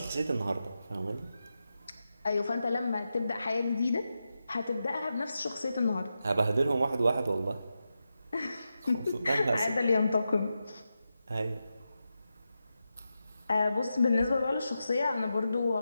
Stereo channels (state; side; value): inverted; both; correlation -0.89